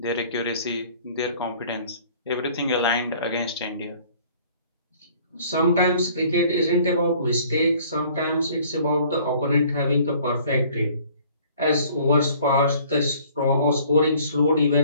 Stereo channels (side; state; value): both; inverted; correlation -0.55